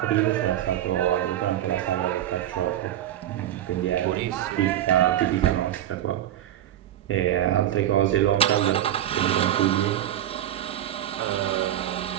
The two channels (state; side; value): quieter; left; 12.1 dB